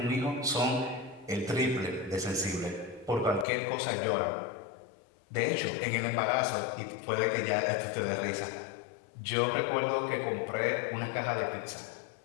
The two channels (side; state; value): right; drops out; at 3.5 s